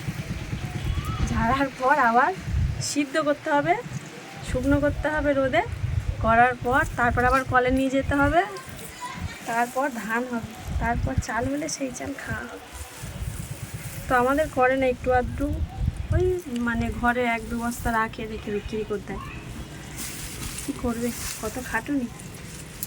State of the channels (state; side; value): identical; both; correlation 1.00